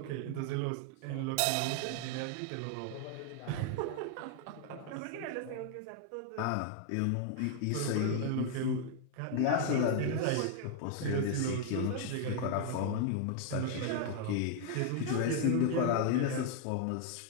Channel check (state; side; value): different; both; correlation 0.00